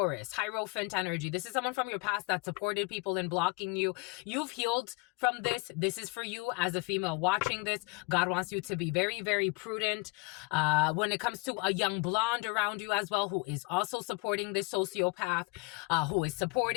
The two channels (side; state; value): right; quieter; 27.5 dB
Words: Hierophant energy. This is someone from your past that supported people in blocking you. You've healed from this. This is for you as a female watching this. God wants you to be very, very prudent when it comes to a young blonde around you as well, who is also supporting this sociopath, who is